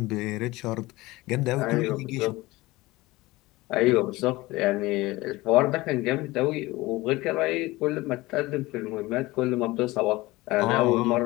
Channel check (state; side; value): quieter; right; 20.1 dB